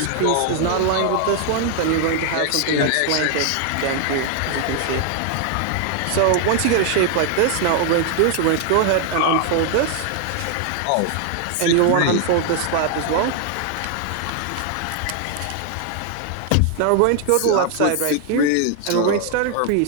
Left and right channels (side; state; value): both; different; correlation 0.00